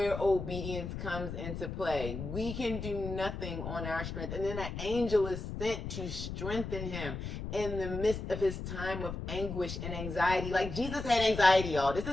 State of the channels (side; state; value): left; noise; rumble, 6 dB below the sound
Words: obedience comes into play. We can do nothing on our strength. And then an angel is sent to strengthen him in the midst of his time of anguish and anxiety. Like Jesus had anxiety, y'all. This